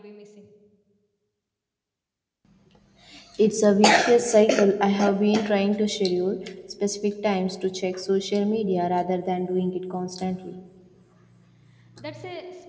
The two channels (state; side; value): identical; both; correlation 1.00